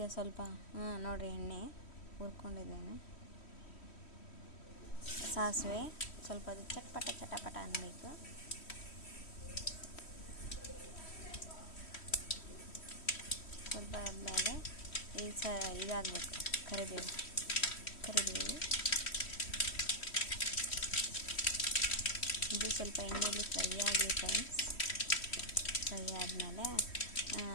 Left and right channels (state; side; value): late; right; 3.1 ms